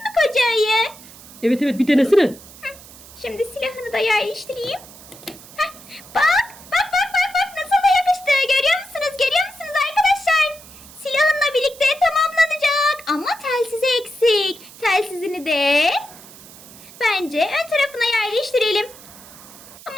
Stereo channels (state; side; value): noise; right; hiss, 19 dB below the sound